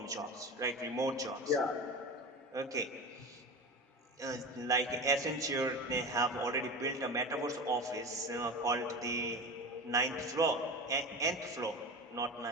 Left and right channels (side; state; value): both; normal; correlation 0.29